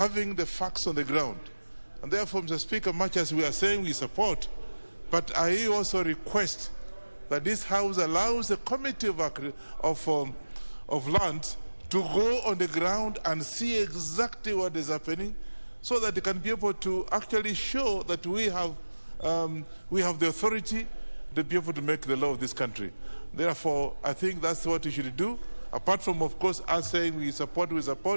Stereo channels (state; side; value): inverted; both; correlation -1.00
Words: the facts on the ground. And therefore, Mr. Speaker, much as we are saying we support, but I also request that this House allows the Committee of Lands to go on the ground and see exactly what is happening, so that they can be able to actually show that we have the authority to be able to make the law of this country. Therefore, I think that's what we should do. Apart from, of course, us saying we support,